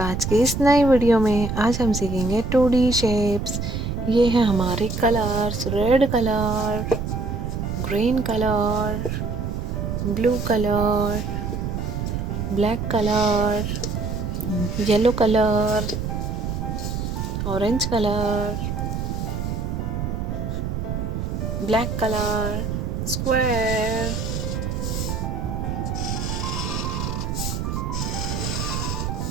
आज की इस नई वीडियो में। आज हम सीखेंगे 2D शेप्स। ये हैं हमारे colours, red colour, green colour, blue colour, black colour, yellow colour, orange colour, black colour, square,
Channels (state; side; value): noise; right; rumble, 3 dB below the sound